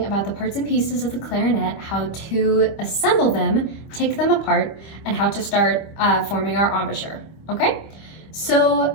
about the parts and pieces of the clarinet, how to assemble them, take them apart, and how to start forming our embouchure, okay? So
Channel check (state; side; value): late; right; 25 ms